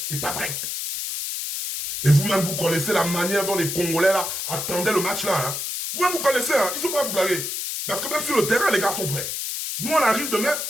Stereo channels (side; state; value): left; noise; hiss, 4 dB below the sound